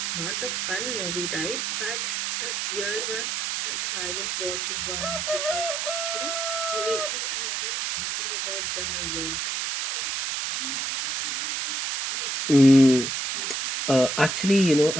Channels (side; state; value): right; noise; hiss, 2 dB below the sound